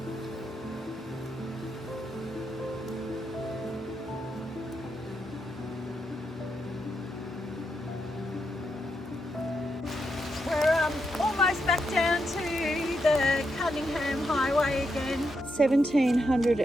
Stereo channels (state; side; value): normal; both; correlation 0.82